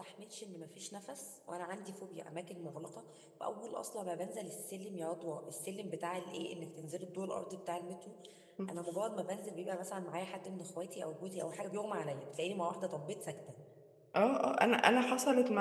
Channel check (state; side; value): identical; both; correlation 1.00